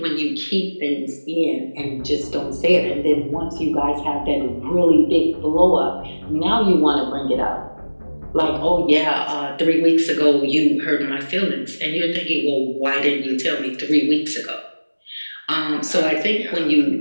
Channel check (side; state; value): both; inverted; correlation -1.00